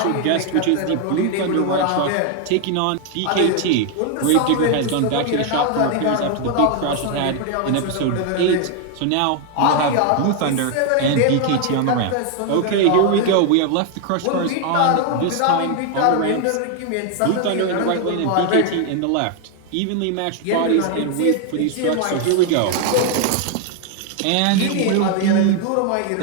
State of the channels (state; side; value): different; both; correlation 0.01